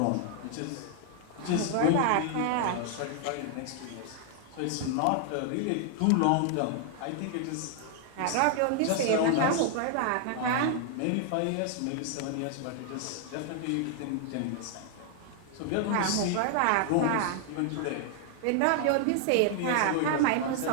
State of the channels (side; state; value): both; different; correlation 0.00